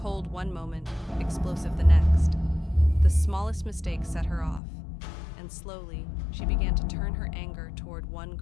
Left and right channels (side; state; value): right; drops out; at 4.6 s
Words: one moment, explosive the next. The smallest mistake set her off, and slowly, she began to turn her anger toward one